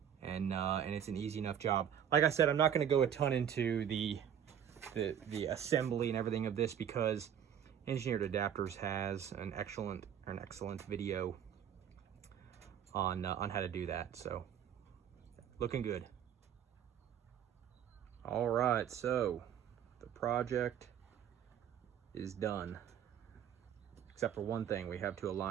and it's an easy enough job. Like I said, I'm not gonna go a ton into the assembly and everything of this because Engineered Adapters has an excellent video on how to do that. So looking good. All right, so the project is done, except for one thing. We have to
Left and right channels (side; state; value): left; quieter; 9.1 dB